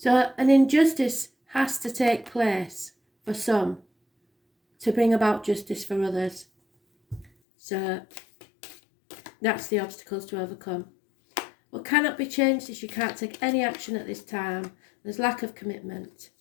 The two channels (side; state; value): right; drops out; at 7.3 s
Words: an injustice has to take place for some to bring about justice for others. So, that's the obstacles to overcome. What cannot be changed is you can't take any action at this time. There's lack of commitment.